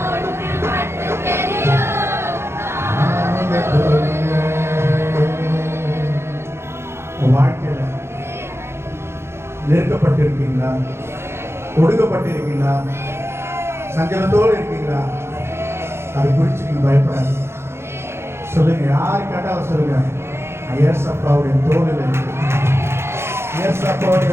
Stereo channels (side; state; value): left; late; 0.12 ms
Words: வாழ்க்கையில நெருக்கப்பட்டிருக்கீங்களா? ஒடுக்கப்பட்டிருக்கீங்களா? சஞ்சலத்தோடு இருக்கீங்களா? அது குறித்து நீங்க பயப்படாது. சொல்லுங்க. யாரு கேட்டாலும் சொல்லுங்க. ஏசப்பாவுடைய தோளில் இருக்கு.